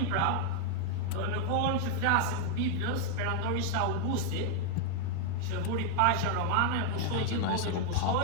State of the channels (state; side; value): different; both; correlation 0.00